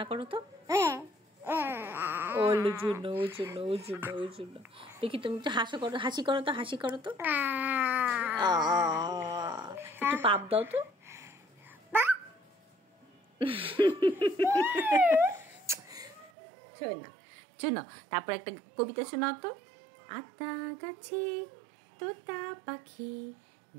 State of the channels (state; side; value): drops out; left; at 16.3 s